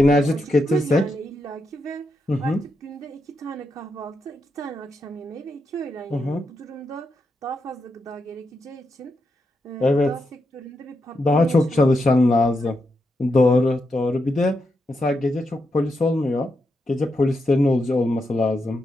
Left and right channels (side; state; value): both; normal; correlation 0.84